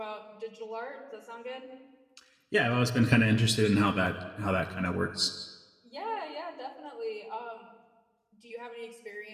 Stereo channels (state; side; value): identical; both; correlation 1.00